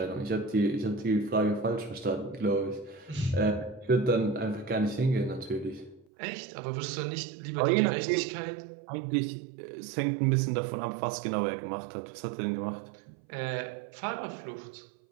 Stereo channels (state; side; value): drops out; left; at 6.1 s